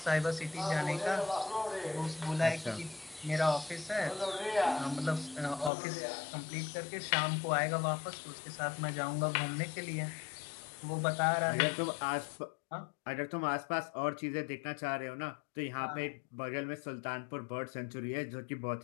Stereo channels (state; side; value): drops out; right; at 5.7 s